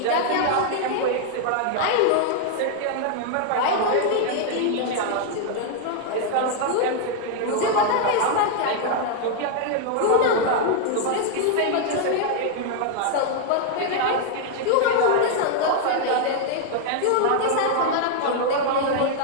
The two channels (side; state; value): both; different; correlation 0.00